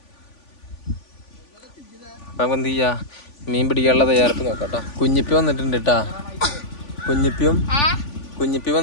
അപ്പം എന്ത് ചെയ്യാ, മീൻ പിടിക്കാനുള്ള തയ്യാറെടുപ്പ് നോക്കാം. കുഞ്ഞിപ്പി വന്നിട്ടുണ്ട് കേട്ടാ. കുഞ്ഞിപ്പി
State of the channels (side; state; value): right; late; 3.5 ms